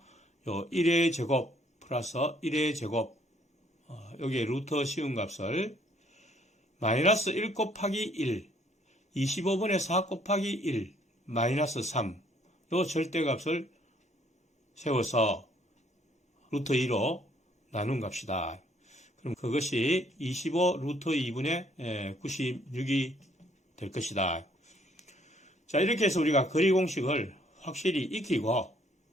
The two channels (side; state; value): both; normal; correlation 0.64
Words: 요 1의 제곱 플러스 1의 제곱, 여기에 루트 씌운 값을 마이너스 1 곱하기 1, 25분의 4 곱하기 1, 마이너스 3, 요 절대값을 세워서 루트 2로 나눈 값이다. 그럼 그것이 25 루트 2분의 96이 될 것이다. 자, 이렇게 해서 우리가 거리 공식을 확실히 익히고,